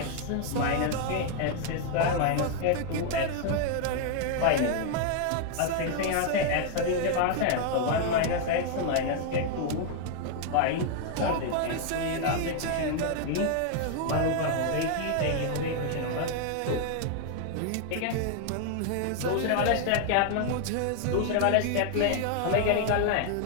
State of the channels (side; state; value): both; different; correlation 0.00